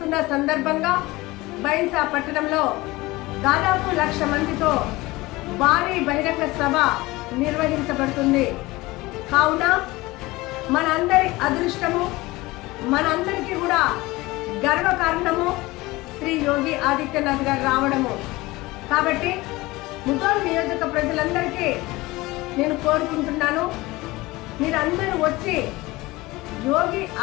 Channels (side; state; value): right; quieter; 20.6 dB